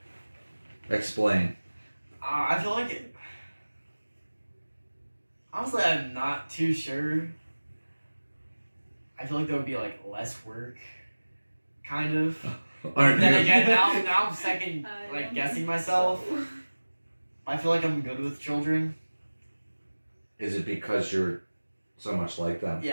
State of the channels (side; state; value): both; inverted; correlation -1.00